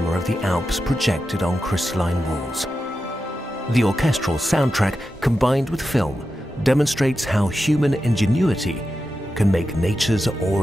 of the Alps projected on crystalline walls. The orchestral soundtrack, combined with film, demonstrates how human ingenuity can make nature's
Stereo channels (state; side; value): normal; both; correlation 0.90